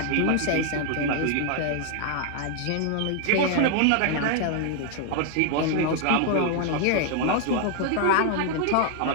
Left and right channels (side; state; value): both; different; correlation 0.00